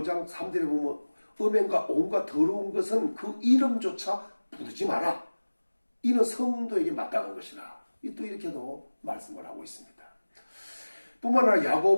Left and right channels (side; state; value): both; inverted; correlation -1.00